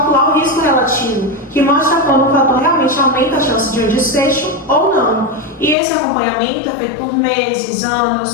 o risco relativo, que mostra quando o fator realmente aumenta a chance de um desfecho ou não. E esse acompanhamento é feito por meses,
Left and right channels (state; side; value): drops out; right; at 5.8 s